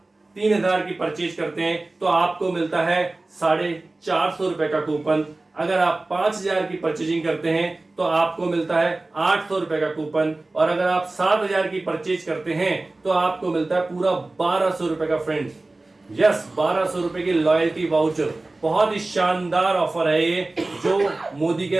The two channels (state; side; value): quieter; left; 3.0 dB